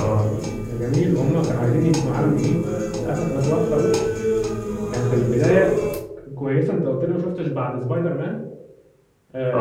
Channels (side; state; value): both; identical; correlation 1.00